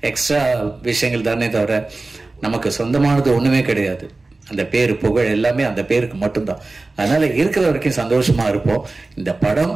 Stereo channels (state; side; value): quieter; left; 3.3 dB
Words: எக்ஸ்ட்ரா விஷயங்கள் தானே தவிர நமக்கு சொந்தமானது ஒண்ணுமே கிடையாது. அந்த பேரு புகழ் எல்லாமே அந்த பேருக்கு மட்டும்தான். அதனால இருக்கிற வரைக்கும் சந்தோஷமா இருப்போம். இந்த படம்